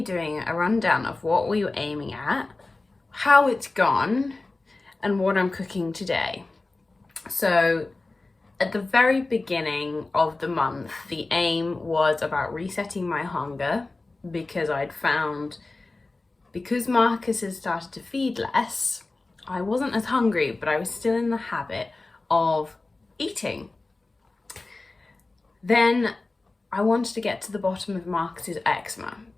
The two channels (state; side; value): quieter; right; 3.3 dB